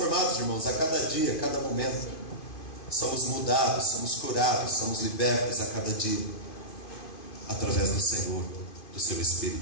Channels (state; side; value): late; right; 2.5 ms